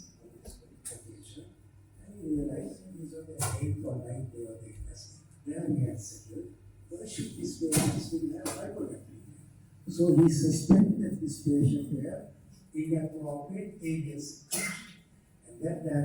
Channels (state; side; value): identical; both; correlation 1.00